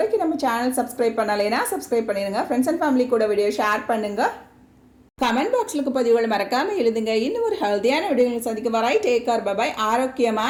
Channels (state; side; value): identical; both; correlation 1.00